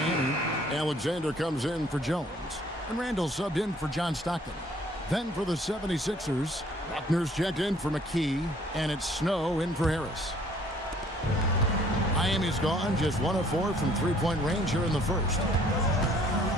Alexander comes in for Jones. And Randall subbed in for John Stockton. Then for the 76ers, Buckner's checked in for McKee, and it's Snow in for Harris. Miami's gone just 1 of 4 from 3-point range here in the first.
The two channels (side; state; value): both; normal; correlation 0.59